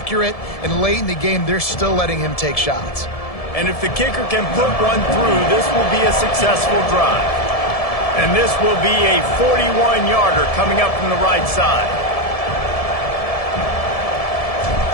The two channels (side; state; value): right; late; 1.7 ms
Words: And late in the game, they're still letting him take shots. And if the kicker can put one through, this will be a successful drive. And this will be a 41-yarder coming up from the right side.